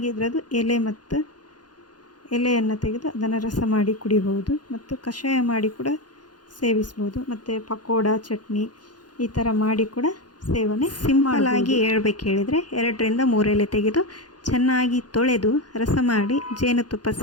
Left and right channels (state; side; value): late; right; 0.69 ms